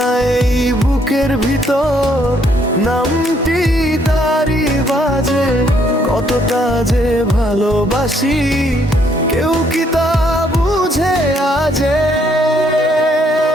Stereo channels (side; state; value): both; normal; correlation 0.69